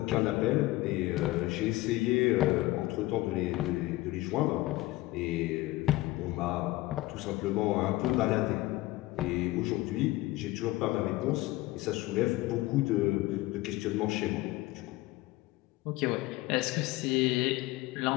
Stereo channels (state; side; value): quieter; right; 18.8 dB